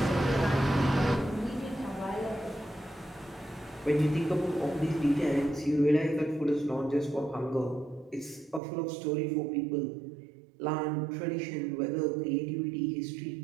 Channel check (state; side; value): drops out; left; at 8.6 s